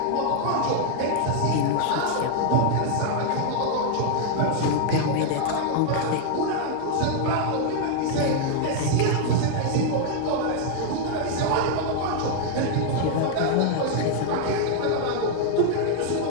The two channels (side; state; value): both; different; correlation 0.00